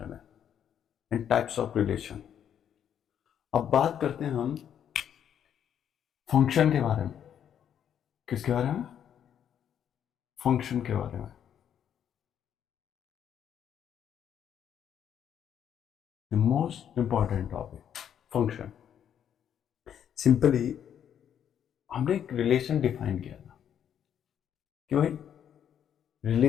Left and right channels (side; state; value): right; quieter; 9.2 dB